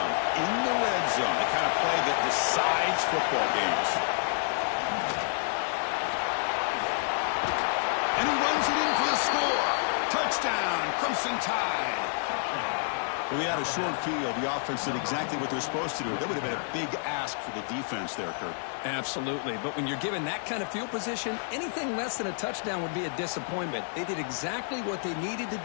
in the red zone, the kind of play that decides football games. And he runs it in for the score. Touchdown, Crimson Tide. Well, we had a short field. The offense did exactly what they're supposed to do. That would have been a big ask for the defense there, Kurt. Absolutely, but when you're given that kind of field position, anything less than a touchdown would be a disappointment. They did exactly what they needed to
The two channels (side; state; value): right; silent; digital silence